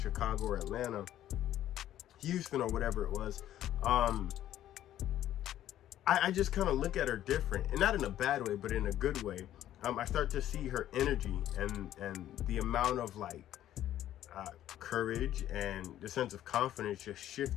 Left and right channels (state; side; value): quieter; right; 12.3 dB